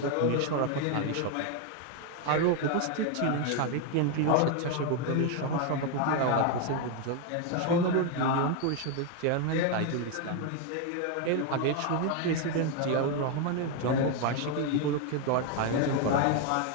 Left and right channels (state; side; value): different; both; correlation 0.01